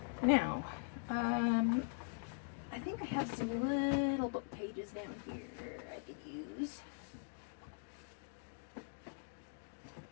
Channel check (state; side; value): silent; right; digital silence